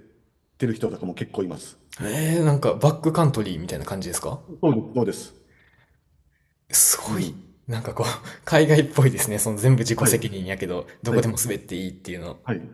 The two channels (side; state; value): both; identical; correlation 1.00